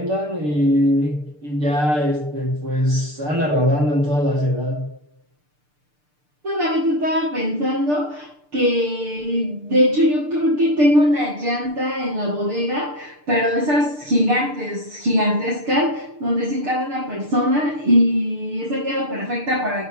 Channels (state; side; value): late; left; 6.7 ms